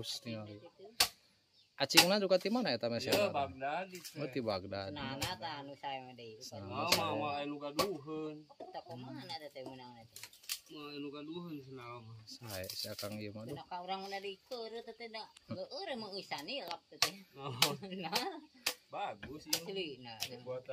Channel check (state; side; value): identical; both; correlation 1.00